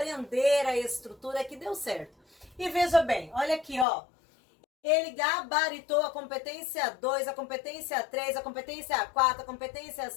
a estrutura que deu certo. E veja bem, olha aqui, ó. Ele gabaritou a competência 2, a competência 3, a competência 4, a competência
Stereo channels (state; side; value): drops out; right; at 3.9 s